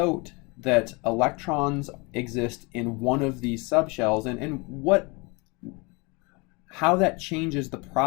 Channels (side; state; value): right; quieter; 28.2 dB